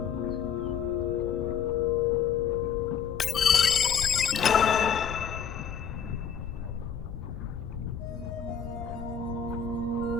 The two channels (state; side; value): quieter; right; 7.4 dB